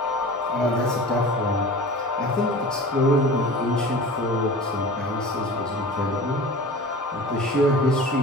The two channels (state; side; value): normal; both; correlation 0.38